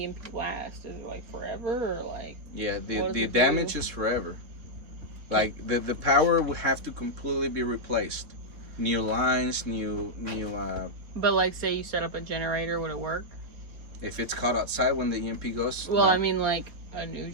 last? Is it like forever or like? Yeah, what does the it damage do? is forever. Like the power would have to completely be replaced. New lines, new But like, say you set up a generator, would it work? if it's caught outside when the EMP goes, Well, no. I mean, like a new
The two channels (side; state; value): left; late; 3.7 ms